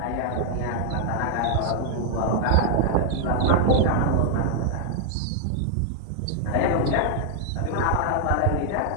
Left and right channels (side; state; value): both; different; correlation -0.01